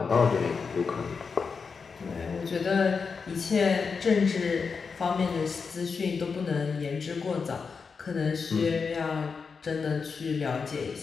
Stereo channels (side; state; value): right; quieter; 5.3 dB